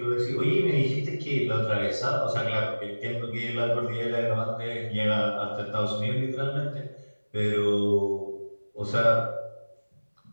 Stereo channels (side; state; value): both; inverted; correlation -1.00